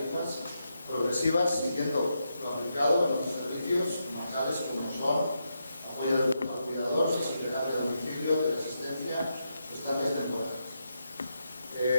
progresivas siguiendo lo aplicado en otros servicios bancales como son apoyo al cuidador, seguridad de domicilio, de asistencia, estancias temporales.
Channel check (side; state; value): both; inverted; correlation -0.84